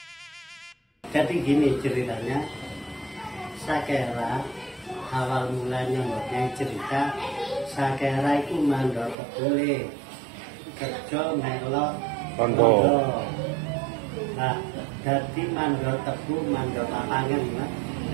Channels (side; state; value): left; drops out; at 9.2 s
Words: Jadi gini ceritanya, Sakera awal mulanya mempunyai cerita, Sakera itu mandor kebule, kerja melok Tondo. Nah, jadi mandor tebu, mandor lapangan, ya.